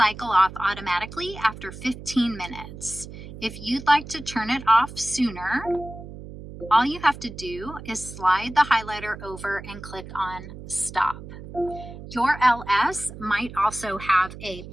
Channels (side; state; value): right; noise; hum, 13 dB below the sound